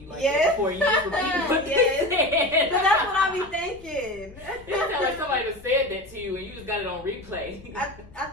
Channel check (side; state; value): left; noise; rumble, 21 dB below the sound